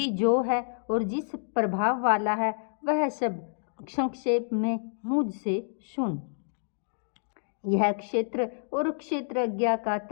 जो है और जिस प्रभाव वाला है वह सब संक्षेप में मुझसे सुन। यह क्षेत्र और क्षेत्रज्ञ का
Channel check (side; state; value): right; silent; digital silence